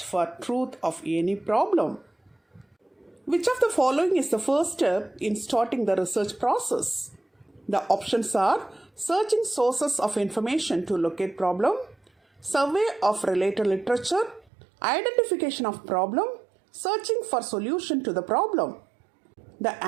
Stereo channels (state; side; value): drops out; left; at 14.5 s